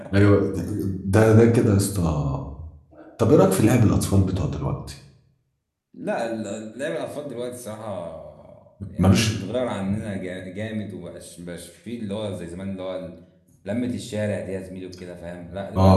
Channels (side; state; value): both; identical; correlation 1.00